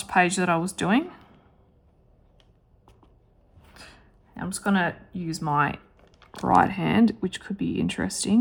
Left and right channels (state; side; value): identical; both; correlation 1.00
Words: page that I was doing. I'm just going to use my right hand, which could be